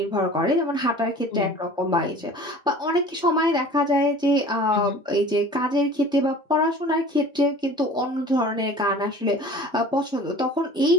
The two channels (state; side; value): normal; both; correlation 0.44